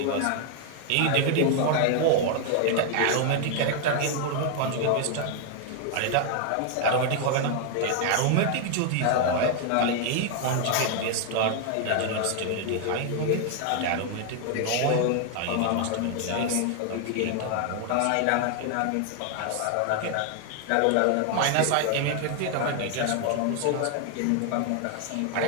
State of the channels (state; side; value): different; both; correlation 0.00